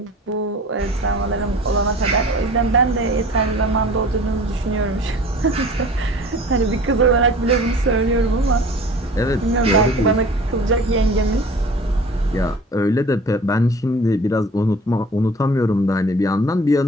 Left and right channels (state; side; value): normal; both; correlation 0.44